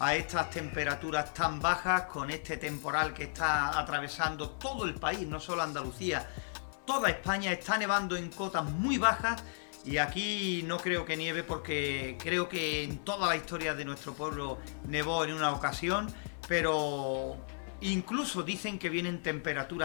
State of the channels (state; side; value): silent; right; digital silence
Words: estas temperaturas tan bajas, con este temporal que está atravesando todo el país, no solo Andalucía, toda España. Está nevando en cotas muy bajas. Y aquí no creo que nieve, porque creo que en toda la historia de nuestro pueblo nevó en una ocasión, pero incluso dicen que vienen